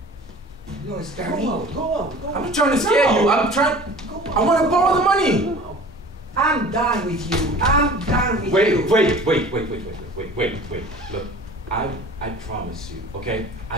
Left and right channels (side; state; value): both; normal; correlation 0.43